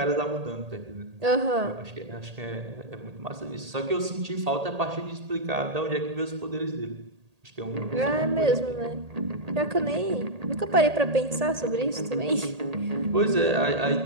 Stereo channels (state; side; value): late; left; 1.8 ms